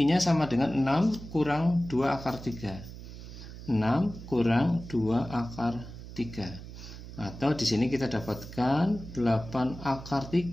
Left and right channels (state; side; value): noise; right; hum, 13 dB below the sound